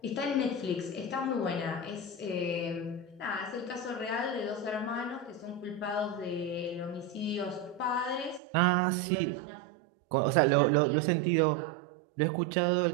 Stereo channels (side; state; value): left; drops out; at 8.4 s